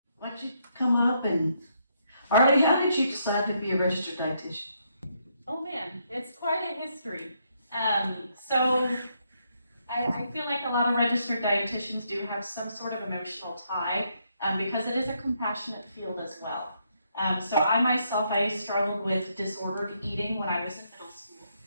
don't you come up and, Arlie, how did you decide to be a registered dietitian? Oh man, it's quite a history. So I feel like a lot of registered dietitians do have some sort of emotional tie because it is a compassionate field as well. So I struggled with disordered eating when I was in middle school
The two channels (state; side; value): inverted; both; correlation -0.75